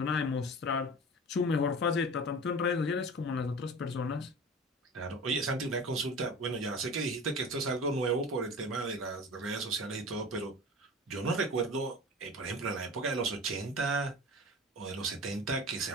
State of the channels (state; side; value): normal; both; correlation 0.36